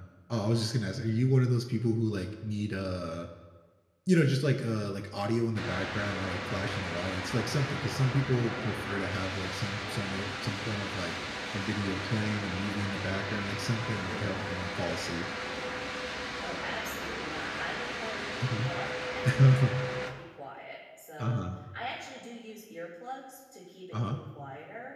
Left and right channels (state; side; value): identical; both; correlation 1.00